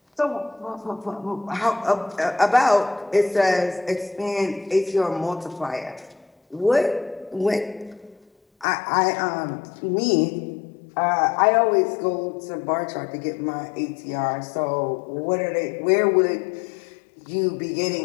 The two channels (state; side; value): drops out; right; at 8.7 s